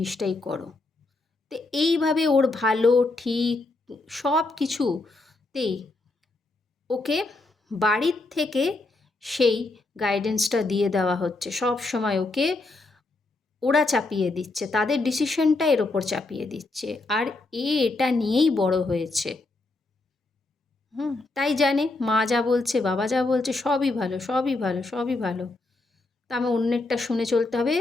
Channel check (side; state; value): right; quieter; 3.2 dB